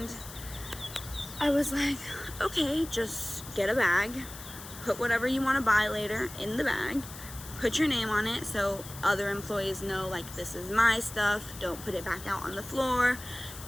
I was like, okay, just get a bag, put whatever you want to buy later in the bag, put your name on it so other employees know, like, this is my stuff, don't put it back out on the floor,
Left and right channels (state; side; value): noise; left; hiss, 14 dB below the sound